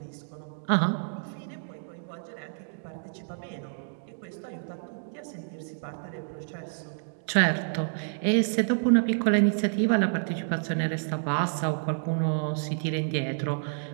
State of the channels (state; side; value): silent; left; digital silence